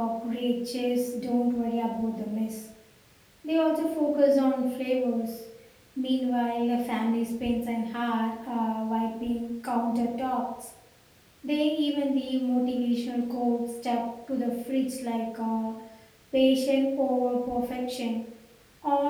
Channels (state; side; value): identical; both; correlation 1.00